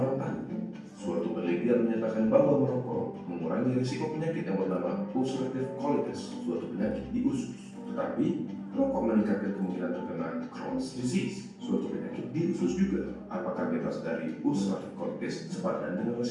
tahu. Suatu penelitian menyatakan bahwa merokok mengurangi risiko penyakit yang bernama ulcerative colitis, suatu penyakit di usus. Tetapi, rokok meningkatkan kemungkinan terkena Crohn's disease, suatu penyakit di usus juga. Apakah bebas dari ulcerative colitis sepadan dengan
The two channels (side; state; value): both; identical; correlation 1.00